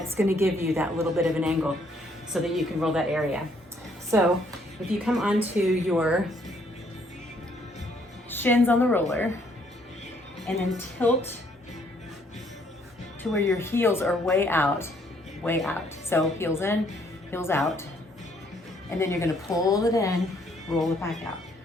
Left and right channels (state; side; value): normal; both; correlation 0.67